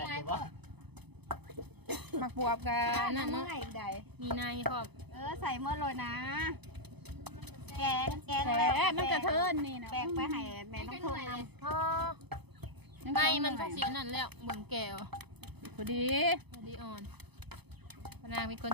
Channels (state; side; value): late; left; 0.98 ms